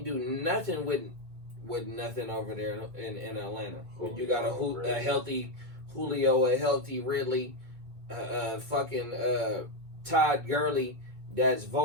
do nothing with nothing over there in Atlanta. When you got a healthy Julio, a healthy Ridley. Fucking Todd Gurley that's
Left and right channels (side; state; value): left; late; 2.3 ms